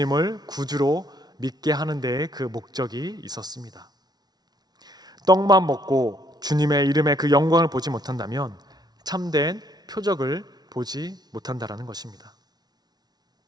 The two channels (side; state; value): left; late; 0.19 ms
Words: 구주로 믿게 하는 데에 그 목적이 있었습니다. 떡만 먹고 주님의 이름의 그 영광을 보지 못한다면 참된 표적을 보지 못한다라는 것입니다.